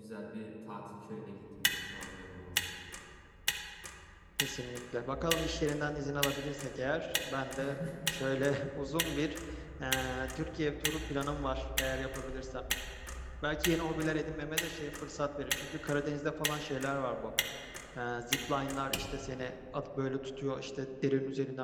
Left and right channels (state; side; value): identical; both; correlation 1.00